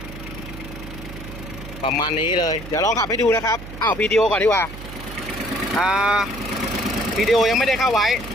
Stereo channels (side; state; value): right; noise; hum, 12 dB below the sound